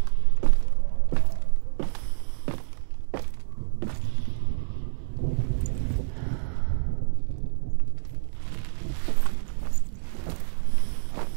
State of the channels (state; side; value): silent; left; digital silence